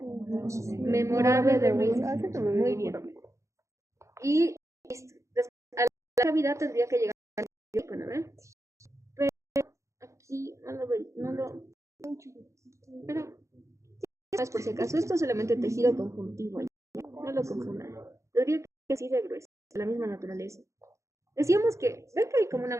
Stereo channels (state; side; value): late; left; 0.15 ms